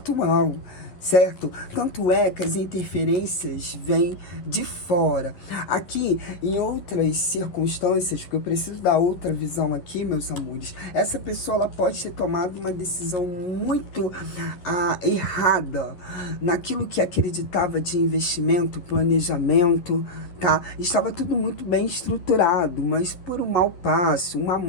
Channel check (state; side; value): late; right; 11 ms